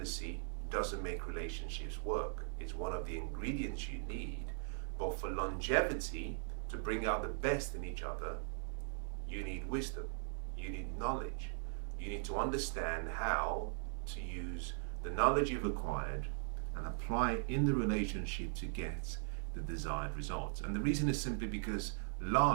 doesn't make relationships work. It's one of the ingredients you need, but for longevity, to bring out the best in each other, you need wisdom, you need knowledge. You need to understand how to use the knowledge you've acquired and apply it in the relationship to get the desired results. And the reason is simply because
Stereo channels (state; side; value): silent; left; 51 dB below the other